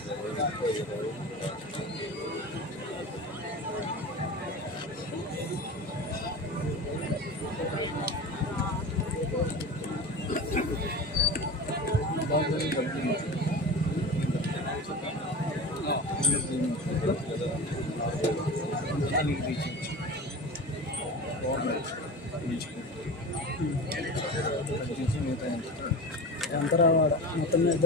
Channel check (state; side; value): normal; both; correlation 0.31